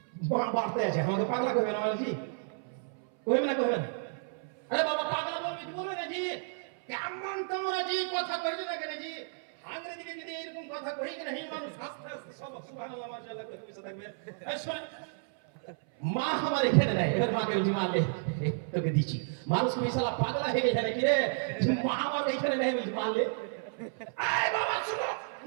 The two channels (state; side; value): silent; left; 57 dB below the other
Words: বাড়তে আছে, আমাকে পাগলা কইবে না বলছি, কইবে না কইবে না? আরে বাবা পাগলা বলবি কি বলবে না জি? কেমন তোমরা জি কথা কইছো না কেন জি? আঙ্গ্রেজি দিকে যদি এরকম কথা কই কেন এই মানুষ আস্তে আস্তে সব সুবহানাল্লাহ মাশাআল্লাহ করে পিছে থাকবে। এই শুনে মা আমার এখানে নাই, এবার মাকে বলছি মা লে তোকে দিচ্ছি। মানুষ কি শালা পাগলা হয়ে গেছে নাকি রে? মা আমার এখানে নাই বলছি মা লে। এই বাবা শুনো,